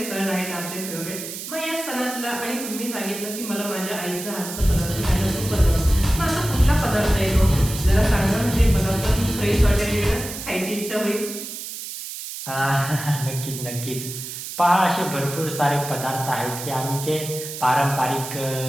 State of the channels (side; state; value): right; noise; hiss, 9 dB below the sound